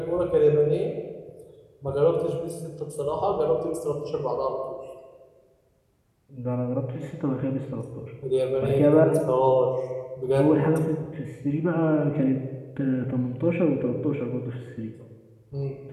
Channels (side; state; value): both; identical; correlation 1.00